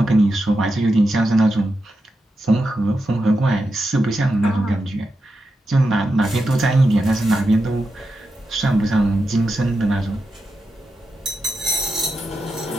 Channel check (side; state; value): both; normal; correlation 0.87